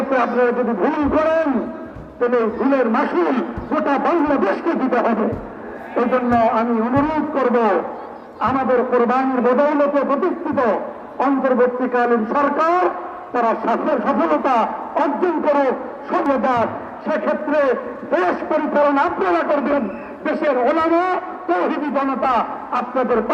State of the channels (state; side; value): identical; both; correlation 1.00